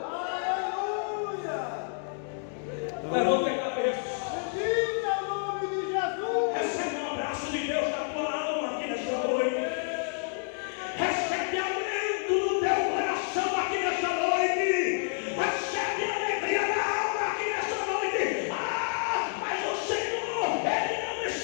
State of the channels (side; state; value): right; silent; 57 dB below the other